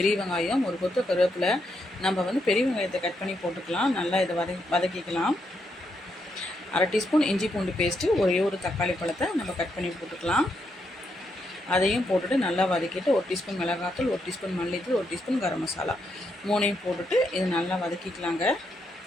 வெங்காயம், ஒரு கொத்து கருவேப்பிலை. நம்ம பெரிய வெங்காயத்தை கட் பண்ணி போட்டுக்கலாம். நல்லா இதை வதக்கிக்கலாம். அரை டீஸ்பூன் இஞ்சி பூண்டு பேஸ்ட்டு, ஒரு தக்காளி பழத்தை நம்ம கட் பண்ணி போட்டுக்கலாம். அதையும் போட்டுட்டு நல்லா வதக்கிட்டு 1 டீஸ்பூன் மிளகாத்தூள், 1 டீஸ்பூன் மல்லித்தூள், 1 டீஸ்பூன் கரம் மசாலா மூணையும் போட்டுட்டு இதை நல்லா வதக்கிக்கலாங்க.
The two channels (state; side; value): normal; both; correlation 0.79